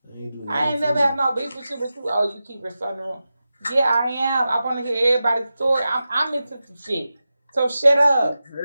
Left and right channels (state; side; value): inverted; both; correlation -0.93